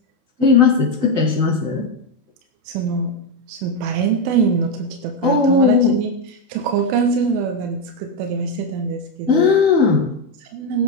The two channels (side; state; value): left; late; 16 ms